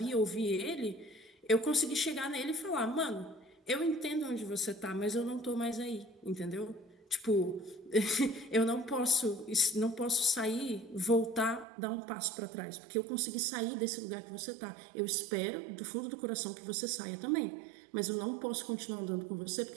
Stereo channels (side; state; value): left; drops out; at 11.7 s